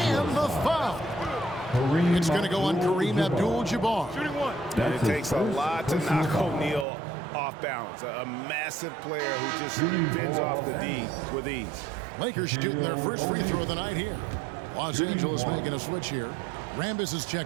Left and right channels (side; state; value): left; drops out; at 6.9 s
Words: the foul. It's going to go on Kareem Abdul-Jabbar. It takes a lot to knock O'Neal off balance. A massive player who just bends off the D with ease. Lakers shooting their first free throw of the night here. Los Angeles making a switch here. Rambis is